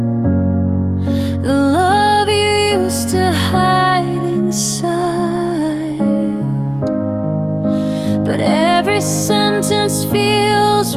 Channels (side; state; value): left; noise; rumble, 25 dB below the sound